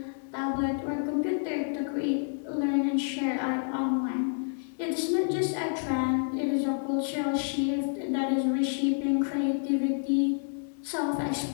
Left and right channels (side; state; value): right; silent; digital silence